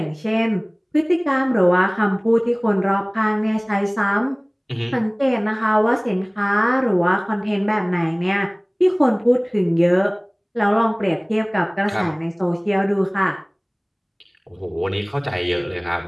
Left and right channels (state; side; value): identical; both; correlation 1.00